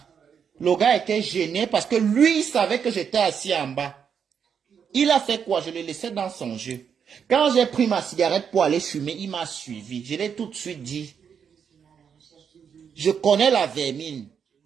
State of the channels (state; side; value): quieter; left; 7.2 dB